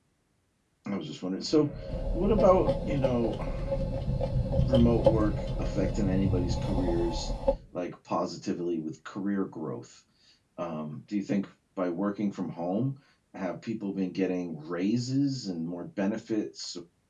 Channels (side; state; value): both; identical; correlation 1.00